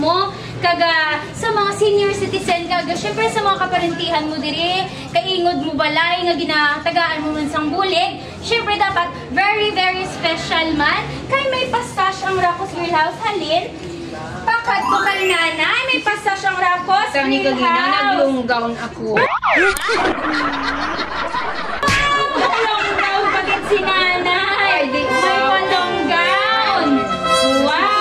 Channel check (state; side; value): identical; both; correlation 1.00